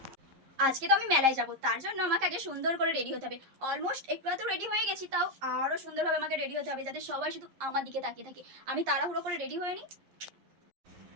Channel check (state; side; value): late; left; 11 ms